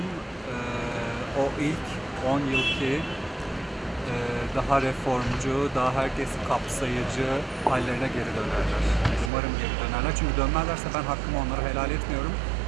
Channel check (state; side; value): drops out; left; at 9.3 s